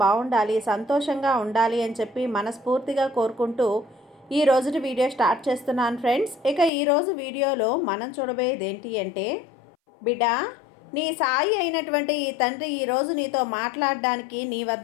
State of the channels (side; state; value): right; drops out; at 6.7 s